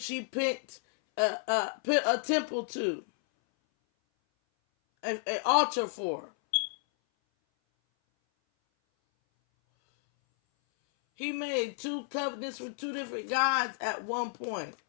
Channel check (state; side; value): silent; right; 57 dB below the other